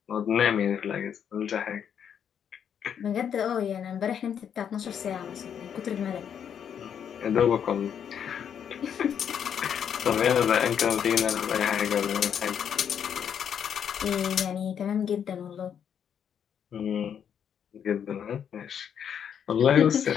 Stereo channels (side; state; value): right; quieter; 8.3 dB